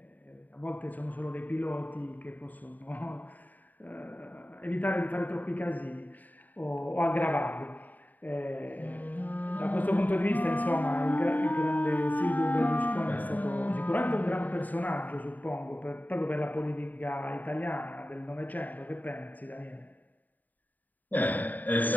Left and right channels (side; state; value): right; late; 0.083 ms